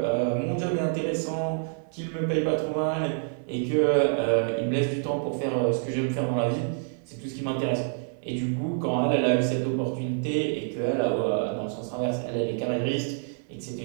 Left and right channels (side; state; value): left; silent; digital silence